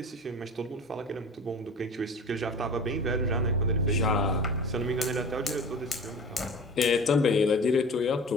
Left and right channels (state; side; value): normal; both; correlation 0.37